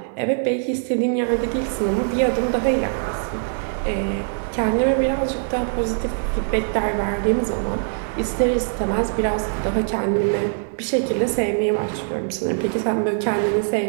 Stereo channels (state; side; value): silent; left; digital silence